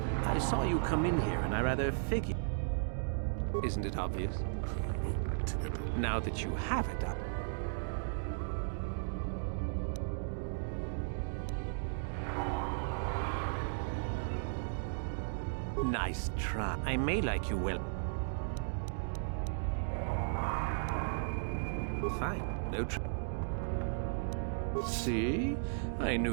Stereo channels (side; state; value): left; silent; digital silence